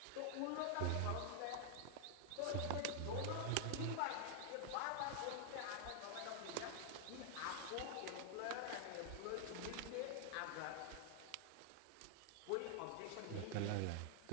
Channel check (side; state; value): both; different; correlation 0.00